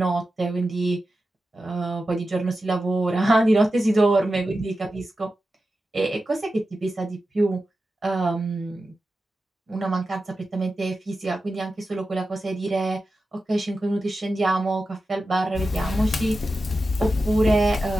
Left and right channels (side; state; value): both; normal; correlation 0.92